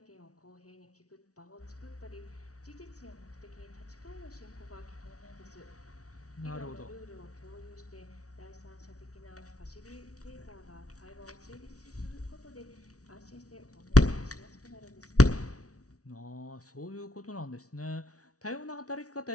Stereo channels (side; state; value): right; late; 0.67 ms